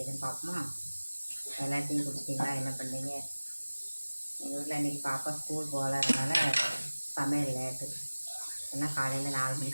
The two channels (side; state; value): both; inverted; correlation -1.00